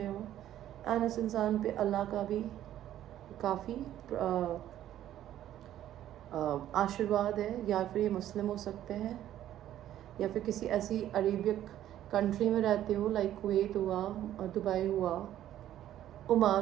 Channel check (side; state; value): left; quieter; 12.2 dB